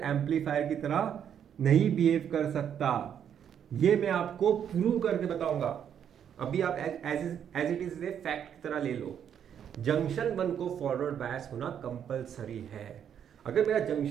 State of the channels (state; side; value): quieter; left; 8.8 dB